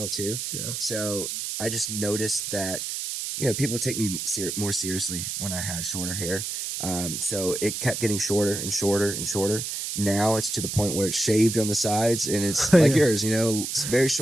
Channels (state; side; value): noise; right; hiss, 4 dB below the sound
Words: too. Yeah. So I just noticed that people take me more seriously when I had shorter hair. So it kept getting shorter and shorter and shorter. Now it's to the point where it's shaved on the sides, and it's like yours. It's very